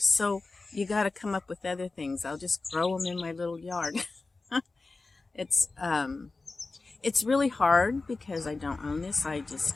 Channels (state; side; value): quieter; right; 3.7 dB